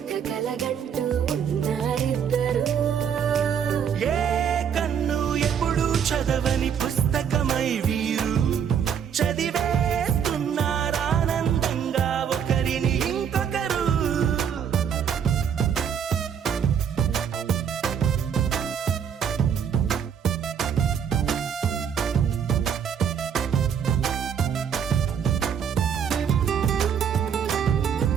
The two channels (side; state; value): left; quieter; 8.0 dB